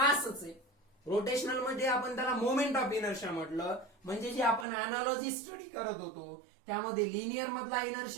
आहे. रोटेशनल मध्ये आपण त्याला मोमेंट ऑफ इनर्शिया म्हटलं. म्हणजे जे आपण अनालॉजी स्टडी करत होतो त्यामध्ये लिनियर मधला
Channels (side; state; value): left; drops out; at 4.7 s